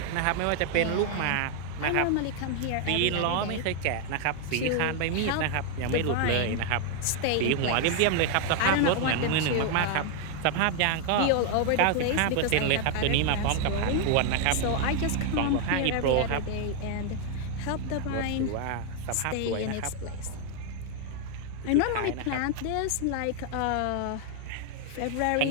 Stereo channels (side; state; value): both; different; correlation 0.00